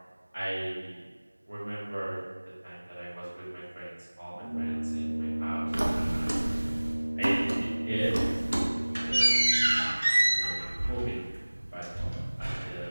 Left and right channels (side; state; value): both; inverted; correlation -1.00